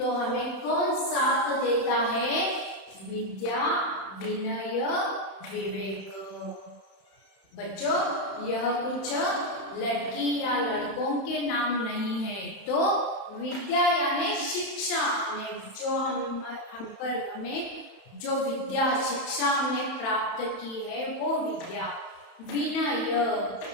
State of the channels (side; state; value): right; late; 31 ms